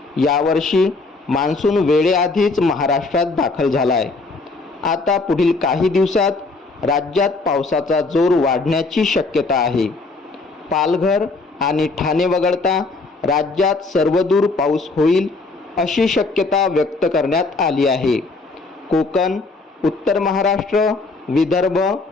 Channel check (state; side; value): quieter; right; 3.6 dB